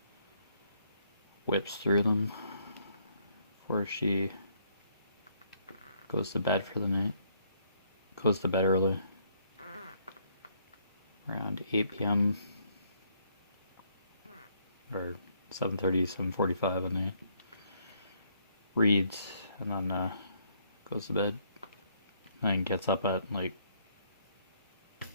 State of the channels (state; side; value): inverted; both; correlation -0.69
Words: whips through them before she goes to bed for the night. Goes to bed early, around 8 p.m. or 7:30, 7:45 at night. Reads and then goes to bed. And gets up at like